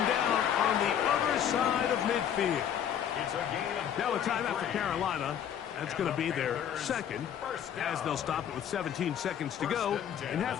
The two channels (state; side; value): quieter; right; 9.3 dB